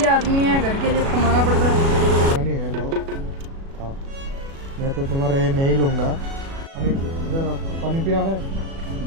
आदमी है, घर के लिए कमाना पड़ता है। बिरयानी है, लो खाओ। मैं तो तुम्हारा ये नहीं लूँगा। पानी इधर आओ, पानी पिया है?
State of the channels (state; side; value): late; left; 36 ms